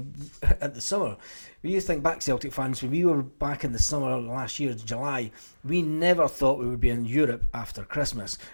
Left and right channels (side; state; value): both; inverted; correlation -1.00